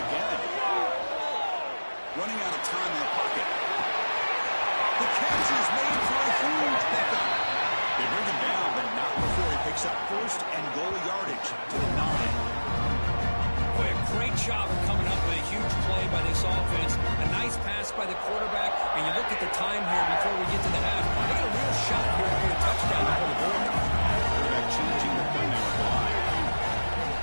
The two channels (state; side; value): inverted; both; correlation -1.00